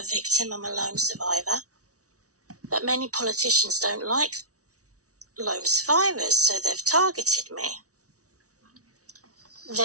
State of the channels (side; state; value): left; late; 0.66 ms